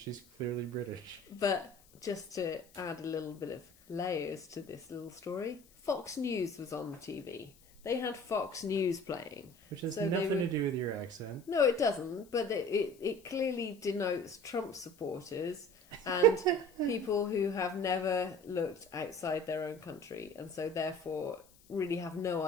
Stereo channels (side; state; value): left; noise; hiss, 27 dB below the sound